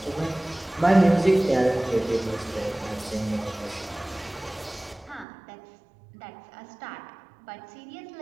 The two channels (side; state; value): left; drops out; at 5.2 s